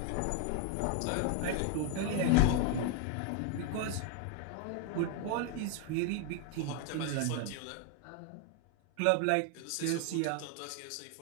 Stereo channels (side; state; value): both; different; correlation 0.01